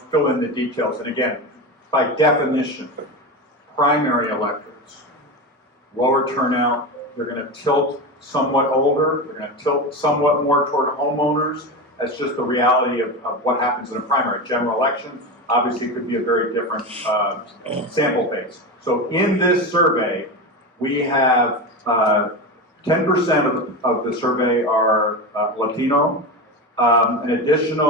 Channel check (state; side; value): normal; both; correlation 0.21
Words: in the details. And again, by definition, primary electorates, lower turnout, they're going to tilt somewhat older, they're going to tilt somewhat more toward homeowners. That's just the reality of what happens in a primary. General election, obviously, could be a very different sample base. So in this survey, we have 10% of the survey are Latino. An